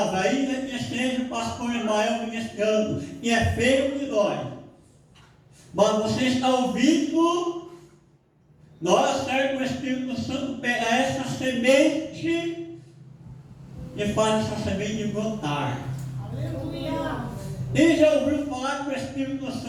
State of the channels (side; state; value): both; identical; correlation 1.00